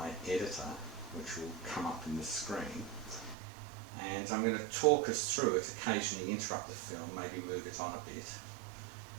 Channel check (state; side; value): drops out; left; at 3.4 s